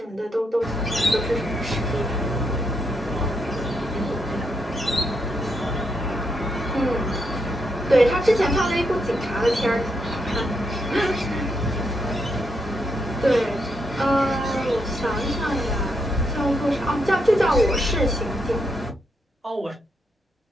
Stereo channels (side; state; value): both; normal; correlation 0.80